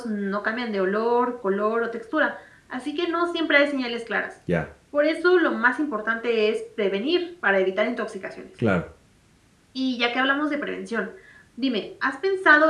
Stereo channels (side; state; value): both; identical; correlation 1.00